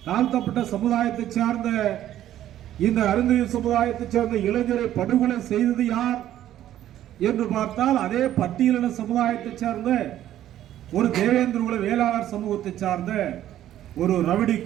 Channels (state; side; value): quieter; left; 12.3 dB